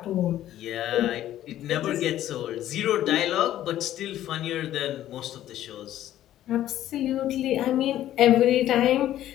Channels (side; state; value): right; quieter; 12.7 dB